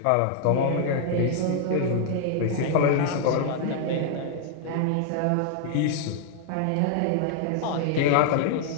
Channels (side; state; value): both; different; correlation -0.01